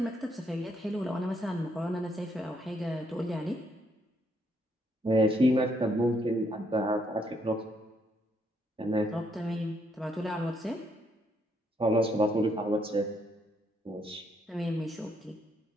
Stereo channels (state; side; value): normal; both; correlation 0.73